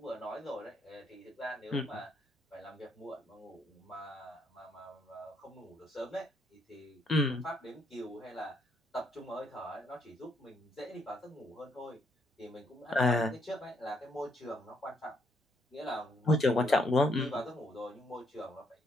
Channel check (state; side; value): normal; both; correlation 0.73